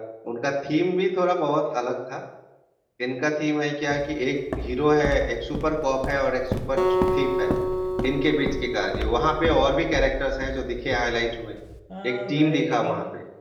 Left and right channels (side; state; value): both; identical; correlation 1.00